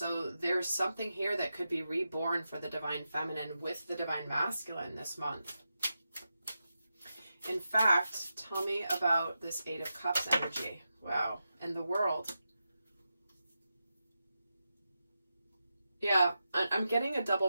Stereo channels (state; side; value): inverted; both; correlation -0.89